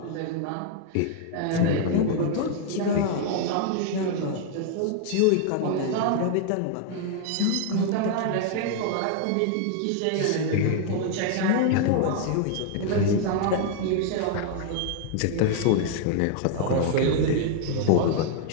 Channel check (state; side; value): different; both; correlation 0.00